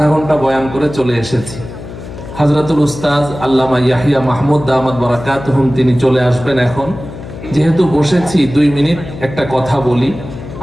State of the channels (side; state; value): left; noise; hum, 12 dB below the sound